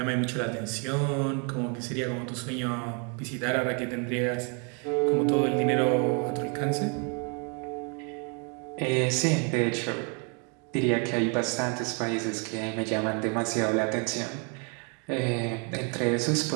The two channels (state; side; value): quieter; left; 36.5 dB